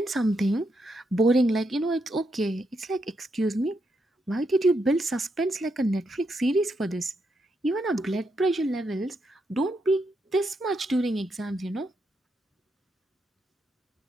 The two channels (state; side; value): normal; both; correlation 0.81